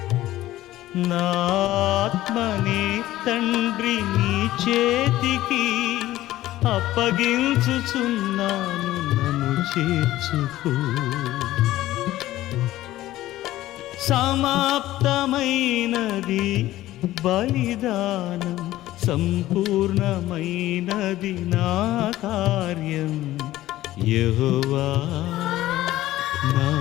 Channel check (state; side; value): quieter; right; 15.3 dB